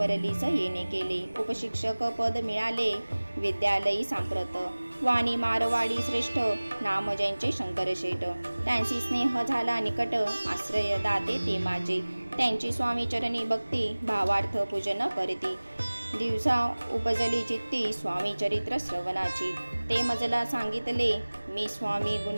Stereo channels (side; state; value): both; inverted; correlation -1.00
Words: येणे केले उपशिक्षक पद मिळाले विद्यालयी सांप्रत वाणी मारवाडी श्रेष्ठ नाम ज्यांचे शंकर शेठ त्यांची स्नेह झाला निकट आश्रय दाते ते माझे त्यांची स्वामी चरणी भक्ती भावार्थ पूजन करती दिवसा उपजली चित्ती स्वामी चरित्र श्रवणाची ते मजला सांगितले मी स्वामी